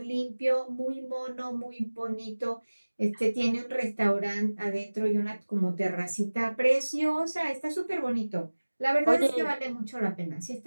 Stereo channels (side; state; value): both; inverted; correlation -1.00